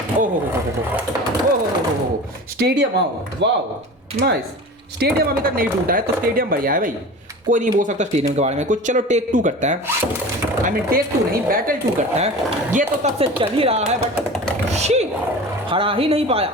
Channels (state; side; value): normal; both; correlation 0.35